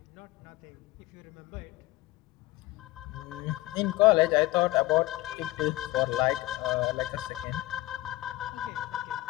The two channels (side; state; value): right; quieter; 18.4 dB